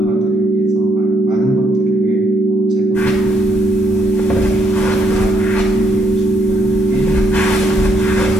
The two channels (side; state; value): both; normal; correlation 0.72